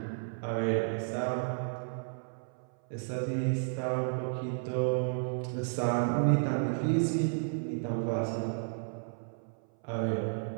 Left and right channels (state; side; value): silent; left; 56 dB below the other